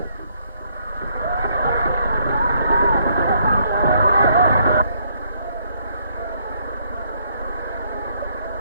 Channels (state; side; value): inverted; both; correlation -0.69